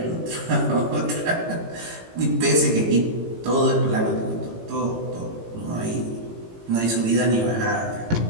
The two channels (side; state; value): left; late; 18 ms